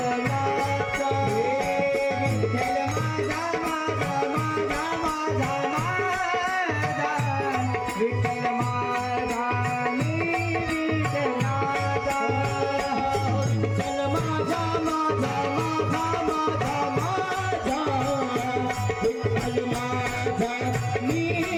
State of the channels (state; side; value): identical; both; correlation 1.00